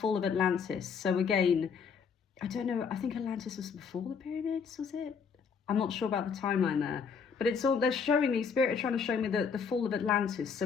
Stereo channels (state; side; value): quieter; right; 6.1 dB